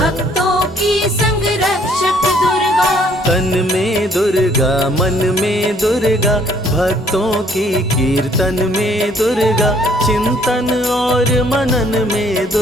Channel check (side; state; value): both; normal; correlation 0.63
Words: की संग रक्षक दुर्गा। तन में दुर्गा मन में दुर्गा, भक्तों की कीर्तन में दुर्गा, चिंतन और मनन में